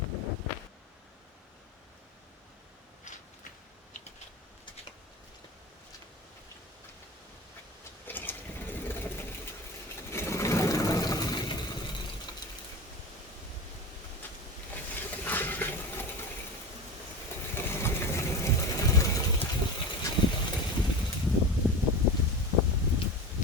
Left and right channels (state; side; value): normal; both; correlation 0.28